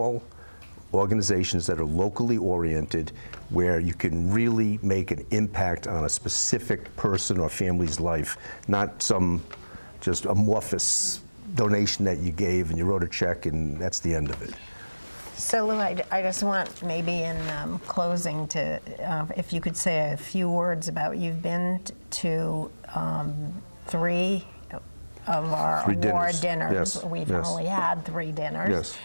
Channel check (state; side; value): inverted; both; correlation -1.00